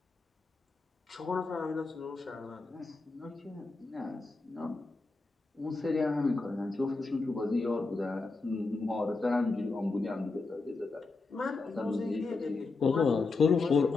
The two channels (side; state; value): right; quieter; 3.8 dB